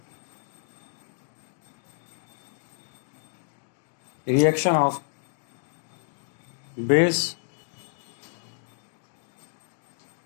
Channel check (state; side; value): silent; right; digital silence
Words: reaction of base